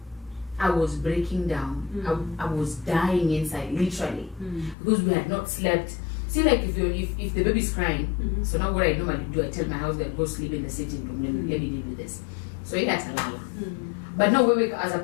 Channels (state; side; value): drops out; right; at 4.8 s